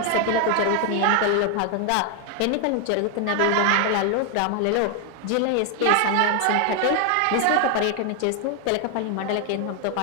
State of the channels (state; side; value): different; both; correlation 0.01